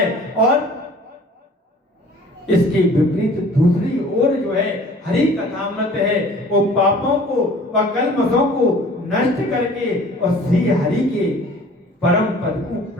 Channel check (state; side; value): normal; both; correlation 0.48